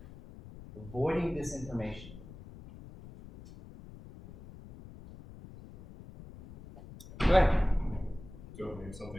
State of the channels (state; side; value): noise; left; rumble, 16 dB below the sound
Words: Avoiding disinformation. Go ahead. Don't name